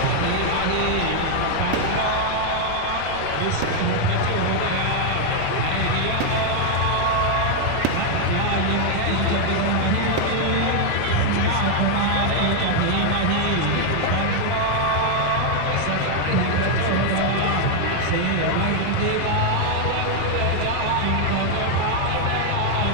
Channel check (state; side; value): different; both; correlation 0.00